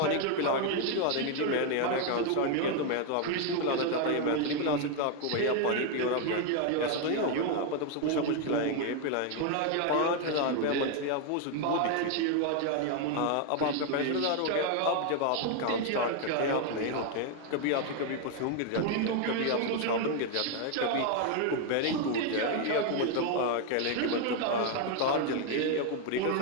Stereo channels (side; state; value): both; different; correlation 0.01